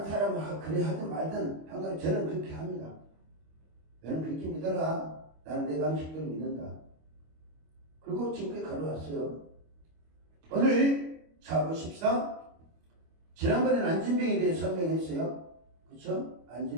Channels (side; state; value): left; late; 25 ms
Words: 사람은 그래 하든 말든 항상 저는 그렇게 합니다. 너는 그렇게 믿어라. 나는 내 방식대로 믿는다. 그리고 지금까지 걸어왔어요. 오늘 자 보십시다. 지난번에는 안진뱅이에 대해 설명했어요. 그렇죠?